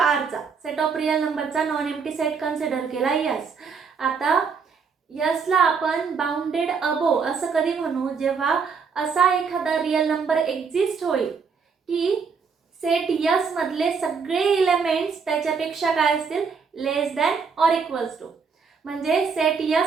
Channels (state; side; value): quieter; left; 5.6 dB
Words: सेट ऑफ रियल नंबरचा नॉन एम्प्टी सेट कन्सिडर केला यस. आता यसला आपण बाउंडेड अबो असं कधी म्हणू, जेव्हा असा एखादा रियल नंबर एक्झिस्ट होईल की सेट यस मधले सगळे एलिमेंट्स त्याच्यापेक्षा काय असतील, less than or equals to. म्हणजे सेट